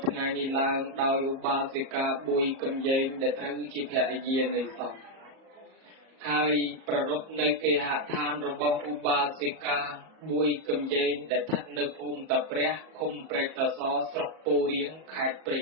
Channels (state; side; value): late; left; 37 ms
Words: ថ្ងៃនេះឡើងដោយឧបាសិកាប៊ុយកំយែងដែលត្រូវជាភរិយានៃសពហើយប្រារព្ធនៅគេហដ្ឋានរបស់ឧបាសិកាប៊ុយកំយែងដែលស្ថិតនៅភូមិតាព្រះឃុំព្រែកតាសស្រុកពោធិ៍រៀងខេត្តព្រៃ